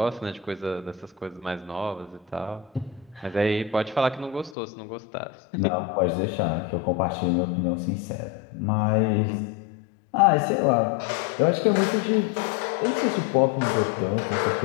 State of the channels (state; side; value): drops out; right; at 4.5 s